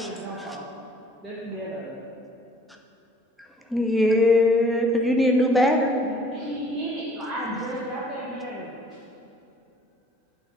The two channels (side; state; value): both; normal; correlation 0.57